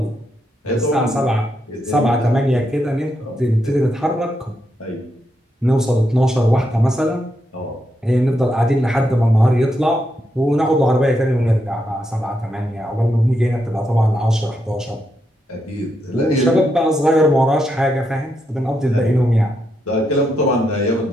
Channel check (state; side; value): normal; both; correlation 0.82